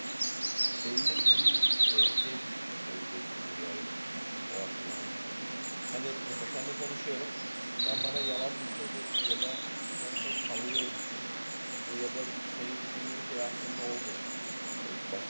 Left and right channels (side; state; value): both; inverted; correlation -1.00